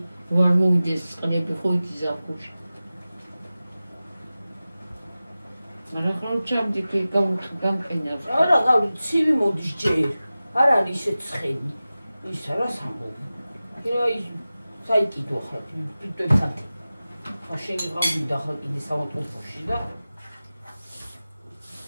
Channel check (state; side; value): inverted; both; correlation -0.96